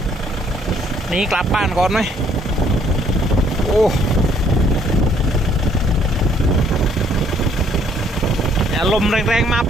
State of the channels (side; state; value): both; normal; correlation 0.65